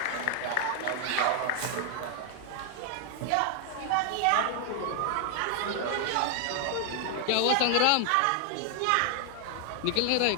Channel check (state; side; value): different; both; correlation 0.00